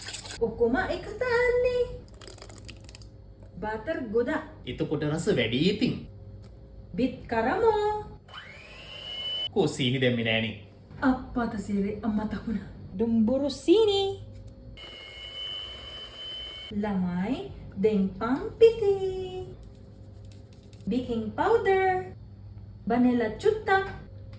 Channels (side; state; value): both; identical; correlation 1.00